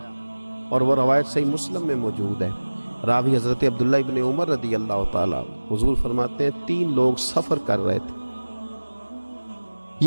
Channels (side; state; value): both; inverted; correlation -1.00